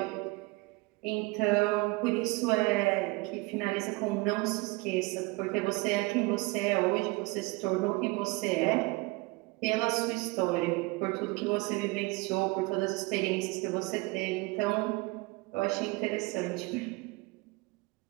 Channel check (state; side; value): quieter; left; 24.6 dB